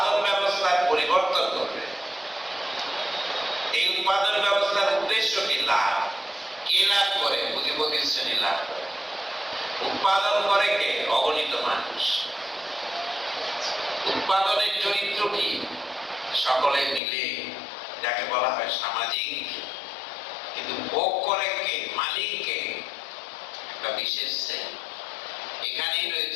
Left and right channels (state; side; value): drops out; right; at 17.0 s